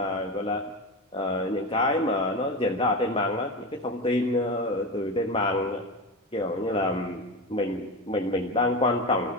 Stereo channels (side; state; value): both; normal; correlation 0.22